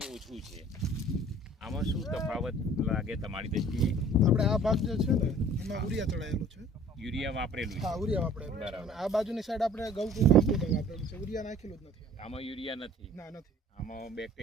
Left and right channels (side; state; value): both; normal; correlation 0.51